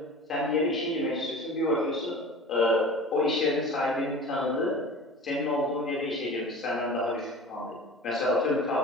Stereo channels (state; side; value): normal; both; correlation 0.38